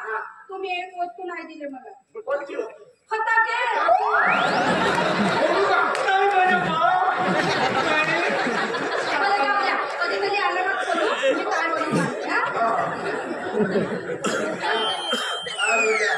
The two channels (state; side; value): identical; both; correlation 1.00